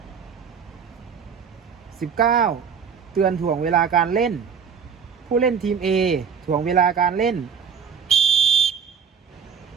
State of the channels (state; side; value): quieter; left; 6.8 dB